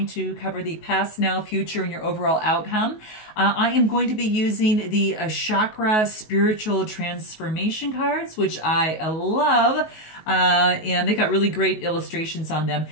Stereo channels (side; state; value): right; late; 19 ms